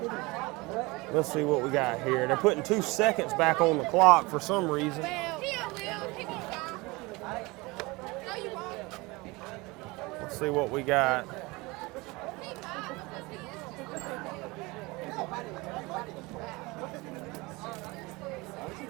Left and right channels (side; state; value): left; quieter; 23.8 dB